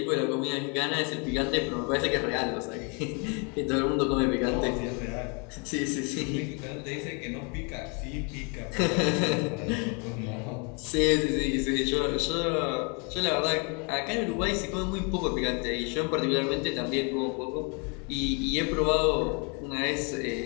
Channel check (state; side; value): quieter; right; 34.4 dB